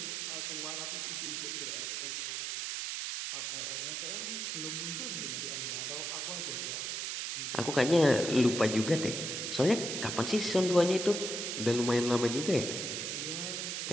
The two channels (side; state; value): right; noise; hiss, 3 dB below the sound